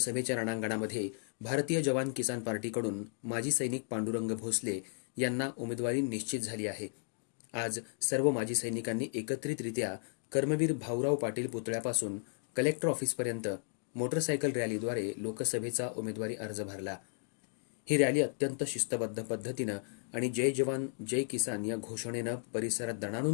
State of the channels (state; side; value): silent; right; 55 dB below the other